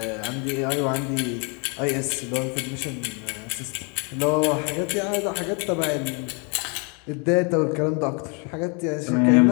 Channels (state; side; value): quieter; right; 35.0 dB